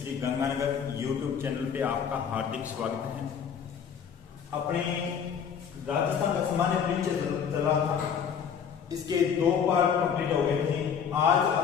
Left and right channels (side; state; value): right; quieter; 7.3 dB